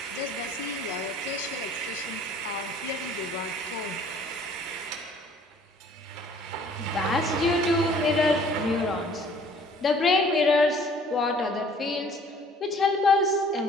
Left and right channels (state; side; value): normal; both; correlation 0.55